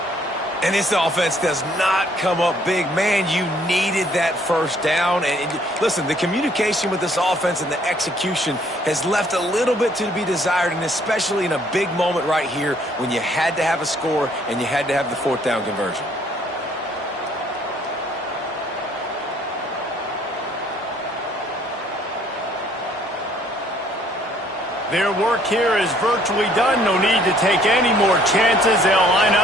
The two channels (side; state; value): both; normal; correlation 0.62